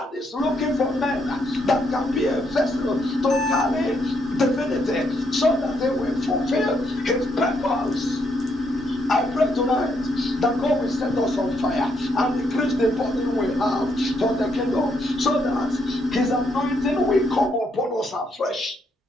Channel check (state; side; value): normal; both; correlation 0.75